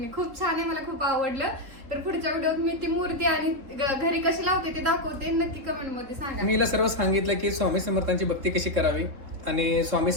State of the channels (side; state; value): left; late; 3.7 ms